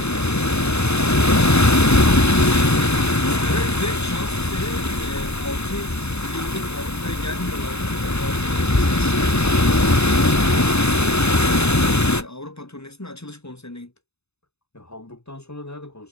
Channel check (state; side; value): late; right; 0.80 ms